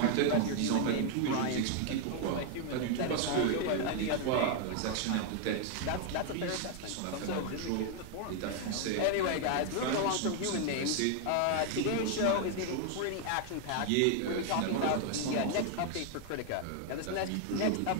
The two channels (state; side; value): different; both; correlation 0.00